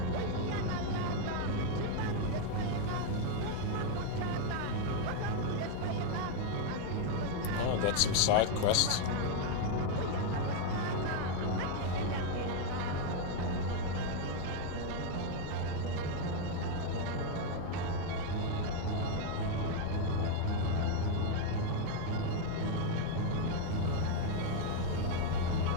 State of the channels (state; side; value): different; both; correlation 0.01